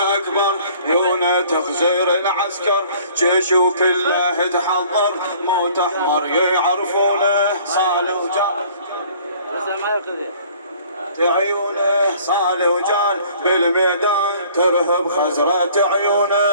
عيونه تخزير العسكر جيش وكله تحضر موت أحمر يعرفونه صالح وجان عيونه صالح وجان بالميدان ترهب خزرة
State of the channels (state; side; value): inverted; both; correlation -0.54